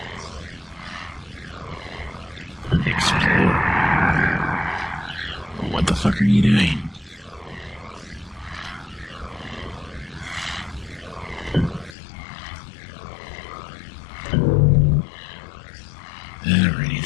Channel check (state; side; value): drops out; right; at 12.0 s